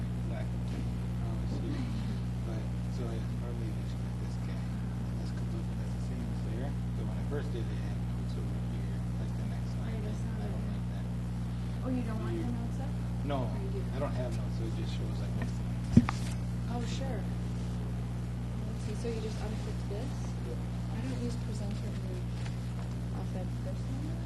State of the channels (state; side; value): identical; both; correlation 1.00